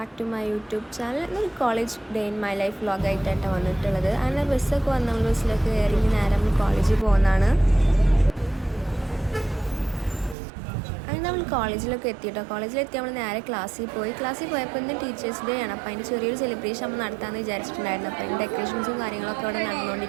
to my YouTube channel. ഇന്നൊരു college day in my life വ്ളോഗായിട്ടാണ് വന്നിട്ടുള്ളത്. അങ്ങനെ ബസ്സൊക്കെ വന്ന് നമ്മൾ ബസ്സിലൊക്കെ കയറി നേരെ നമ്മൾ കോളേജിൽ പോകുന്നതാണ്. അങ്ങനെ നമ്മൾ കോളേജിലൊക്കെ എത്തിയിട്ടോ. കോളേജിലെത്തി നമ്മൾ നേരെ ക്ലാസ്സിൽ പോയപ്പോൾ ഇന്ന് ടീച്ചേഴ്സ് ഡേ ആണ്. അപ്പോൾ അതിൻ്റെ ചെറിയൊരു സെലിബ്രേഷൻ നമ്മൾ നടത്താമെന്ന് വിചാരിച്ചിട്ടുണ്ടായിരുന്നു. അപ്പോൾ അതിൻ്റെ ഡെക്കറേഷൻസും കാര്യങ്ങളൊക്കെ അവിടെ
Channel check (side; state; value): left; drops out; at 10.4 s